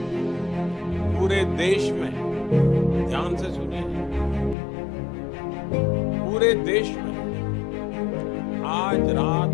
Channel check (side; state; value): right; drops out; at 4.5 s